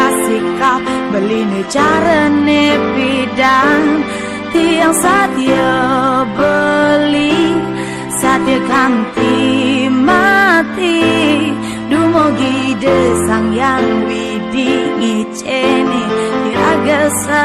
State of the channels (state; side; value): identical; both; correlation 1.00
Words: sikap, beli ni cara ni bidang. Tiang setia beli, setia kanti mati. Dumugi desang yang widi ngiceni, iraga